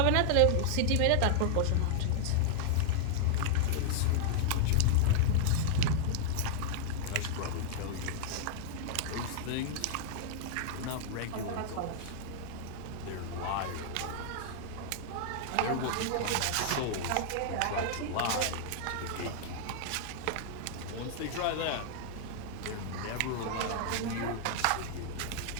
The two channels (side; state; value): both; different; correlation -0.01